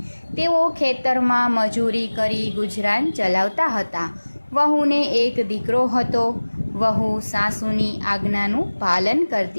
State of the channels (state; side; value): inverted; both; correlation -1.00